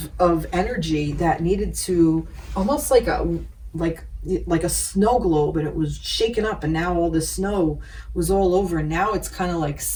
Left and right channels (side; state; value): both; identical; correlation 1.00